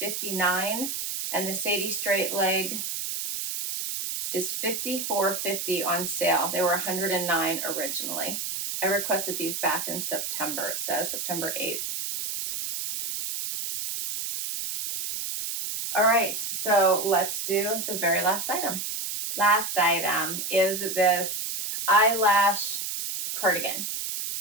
$59, and the Sadie straight leg is $54.50 on sale. They were $109 originally. I requested these back in September. It says September 8th. All right, so let's do the very last item. Last item is this eyelash cardigan.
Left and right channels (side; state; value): right; noise; hiss, 4 dB below the sound